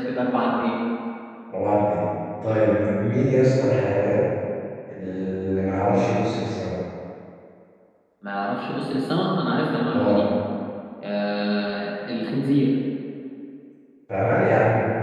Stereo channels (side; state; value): both; identical; correlation 1.00